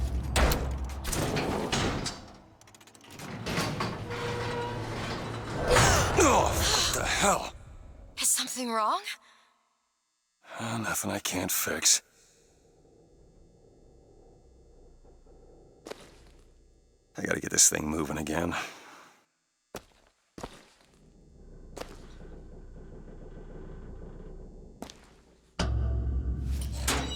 Oh, what the hell? Is something wrong? Nothing I can't fix. I gotta get this thing moving again.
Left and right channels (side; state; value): both; identical; correlation 1.00